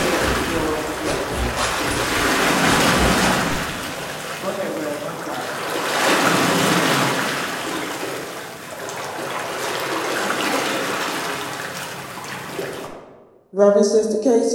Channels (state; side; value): identical; both; correlation 1.00